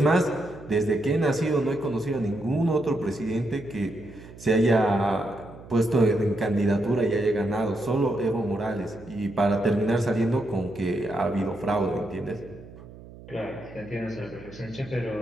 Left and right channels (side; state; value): right; noise; hum, 18 dB below the sound